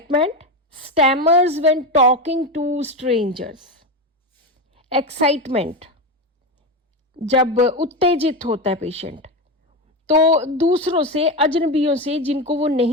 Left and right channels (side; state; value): both; normal; correlation 0.16